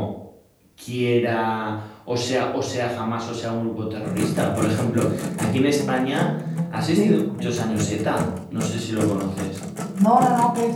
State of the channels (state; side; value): identical; both; correlation 1.00